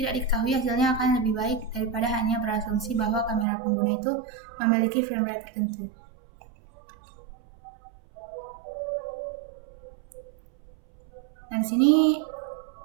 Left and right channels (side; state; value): left; drops out; at 3.5 s